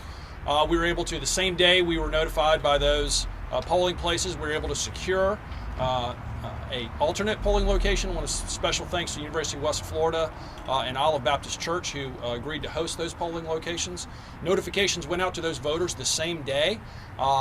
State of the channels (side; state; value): both; identical; correlation 1.00